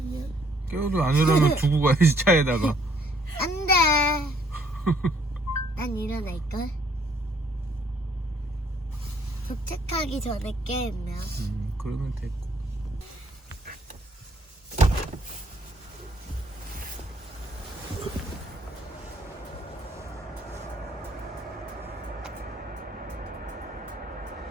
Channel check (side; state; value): both; normal; correlation 0.65